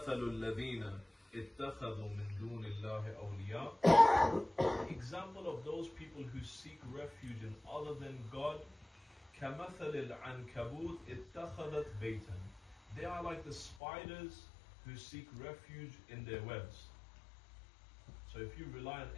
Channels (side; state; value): right; drops out; at 13.8 s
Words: الَّذِينَ اتَّخَذُوا مِن دُونِ اللَّهِ أَوْلِيَاءَ. Example of those people who seek refuge in other than God, كَمَثَلِ الْعَنْكَبُوتِ اتَّخَذَتْ بَيْتًا. They are like the spiders who seek refuge in their webs. So if you rely on